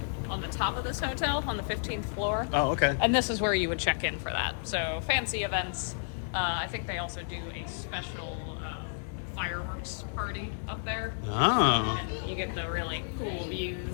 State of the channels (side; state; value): right; silent; 57 dB below the other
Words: on the top of this hotel on the 15th floor. Oh, okay. And this is where you would check in for that. So fancy events. I think they also do a special fireworks party up there. Oh. And you get the really cool